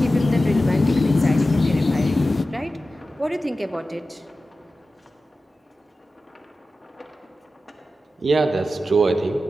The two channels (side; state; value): both; normal; correlation 0.93